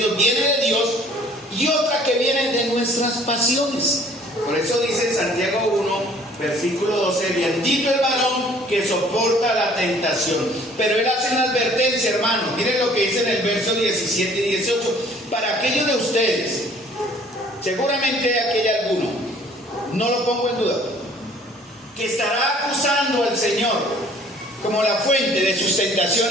viene de Dios, y otra que viene de nuestras pasiones. Por eso dice en Santiago 1, versículo 12, bendito el varón que soporta la tentación. Pero él hace una advertencia, hermanos. Miren lo que dice en el verso 17 y 18. Para aquellos de ustedes, seguramente aquí hay alguno, no lo pongo en duda, que estará acusando al Señor como la fuente de sus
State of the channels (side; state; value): both; normal; correlation 0.55